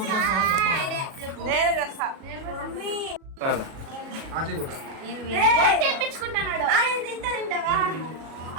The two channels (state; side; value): late; left; 37 ms